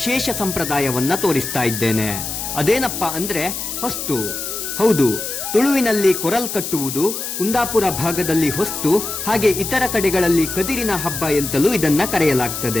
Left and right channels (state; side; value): noise; left; hiss, 5 dB below the sound